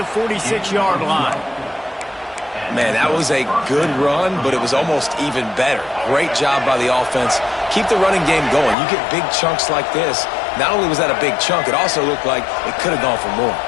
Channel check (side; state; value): right; drops out; at 8.8 s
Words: 46-yard line. Man, that was a good run, but it was almost even better. Great job by the offense. Keep the running game going. You get big chunks like this. Not only was that a big chunk, it also looked like it could have gone for more.